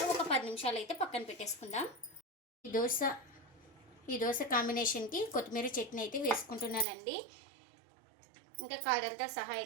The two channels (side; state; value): left; drops out; at 6.9 s